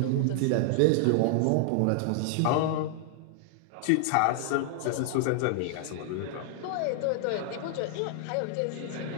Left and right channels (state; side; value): different; both; correlation 0.00